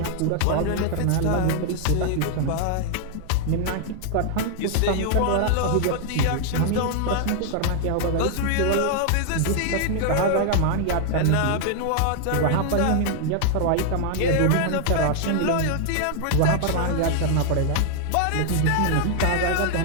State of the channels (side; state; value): both; different; correlation 0.00